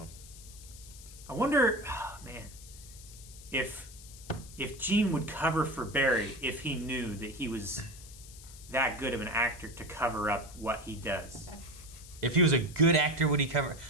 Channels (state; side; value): noise; left; hiss, 18 dB below the sound